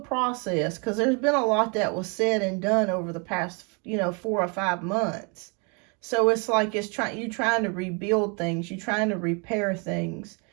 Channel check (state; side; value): quieter; left; 33.6 dB